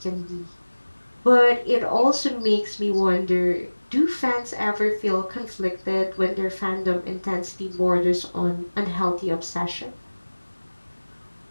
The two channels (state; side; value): inverted; both; correlation -1.00